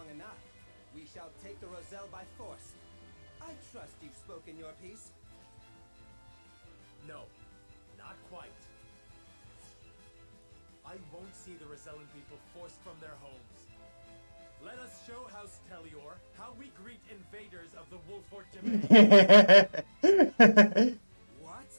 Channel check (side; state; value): both; inverted; correlation -1.00